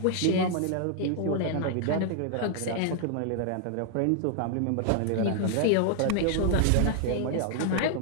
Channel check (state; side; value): different; both; correlation 0.00